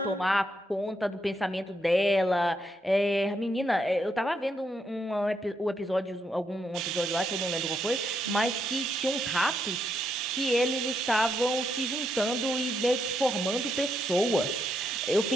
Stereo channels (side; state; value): both; normal; correlation 0.79